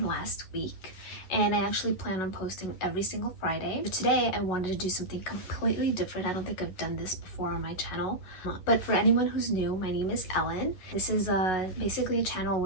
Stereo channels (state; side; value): late; right; 11 ms